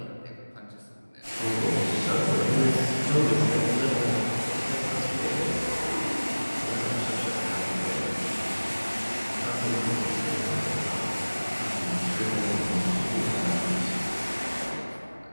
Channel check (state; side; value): inverted; both; correlation -1.00